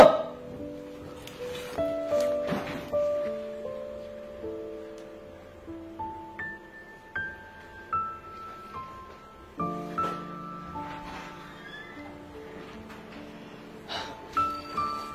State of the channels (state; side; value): identical; both; correlation 1.00